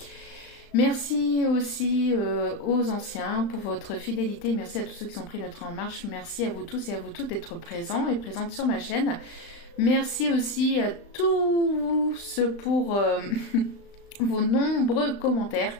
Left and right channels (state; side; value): late; right; 35 ms